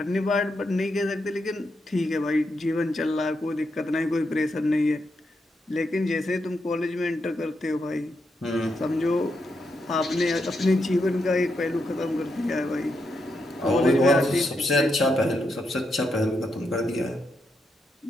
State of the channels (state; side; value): normal; both; correlation 0.82